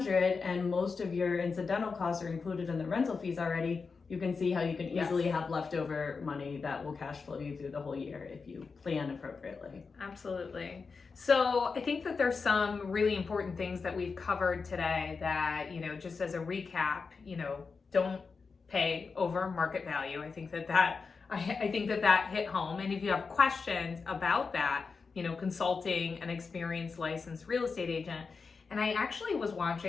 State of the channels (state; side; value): quieter; right; 4.9 dB